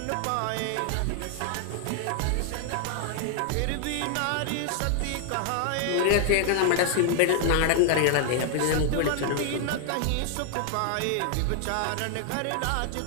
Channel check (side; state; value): both; different; correlation 0.00